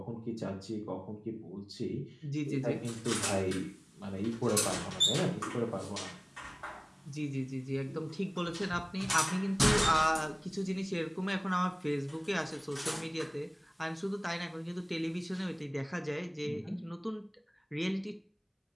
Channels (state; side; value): identical; both; correlation 1.00